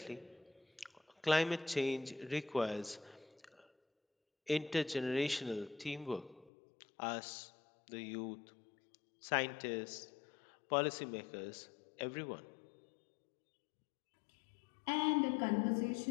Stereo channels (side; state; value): right; drops out; at 6.5 s